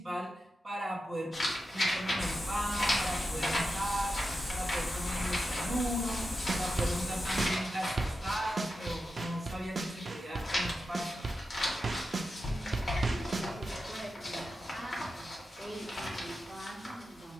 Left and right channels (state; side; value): normal; both; correlation 0.90